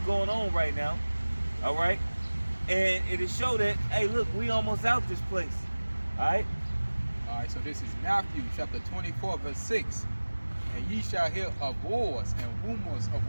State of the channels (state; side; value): inverted; both; correlation -1.00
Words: going on right now. All right, and it is show that, hey, look, we almost out this place. All right. All right, so this is Matthew chapter 24, verse 6. And ye shall hear of wars and rumors of